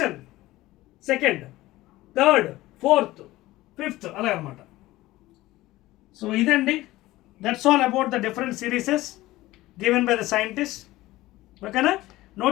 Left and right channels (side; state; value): right; quieter; 17.6 dB